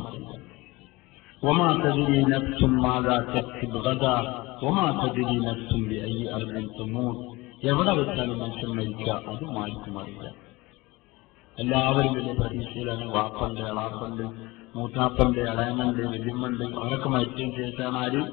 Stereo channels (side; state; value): right; quieter; 21.9 dB